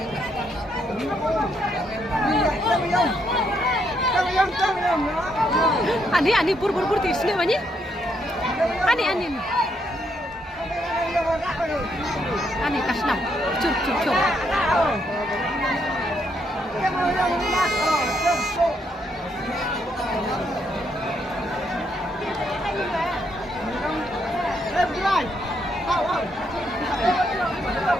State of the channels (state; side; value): normal; both; correlation 0.75